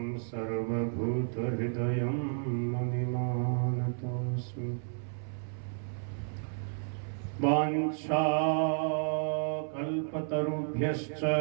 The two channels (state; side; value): silent; left; 56 dB below the other